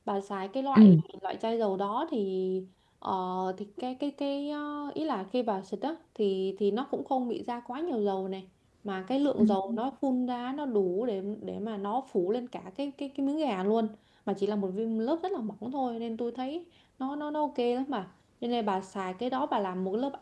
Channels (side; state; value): both; identical; correlation 1.00